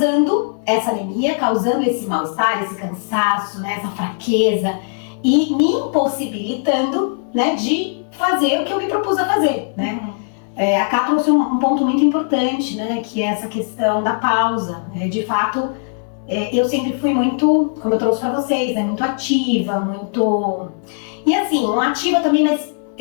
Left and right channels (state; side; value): silent; right; 67 dB below the other